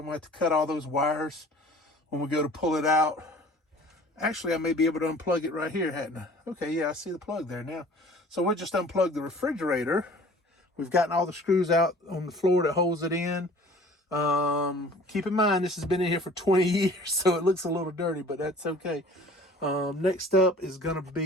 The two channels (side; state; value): both; normal; correlation 0.48